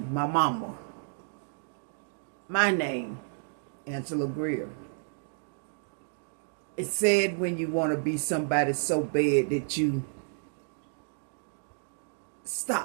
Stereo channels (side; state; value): left; silent; digital silence